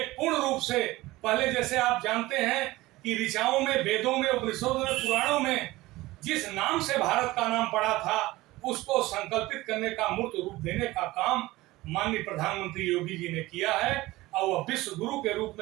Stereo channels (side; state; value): left; quieter; 18.9 dB